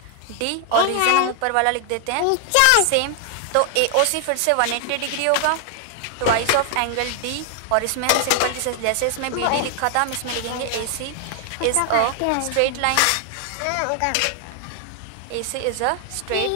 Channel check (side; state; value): both; different; correlation 0.00